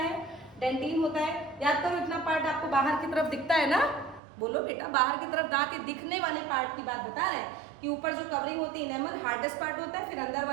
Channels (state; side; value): drops out; left; at 4.2 s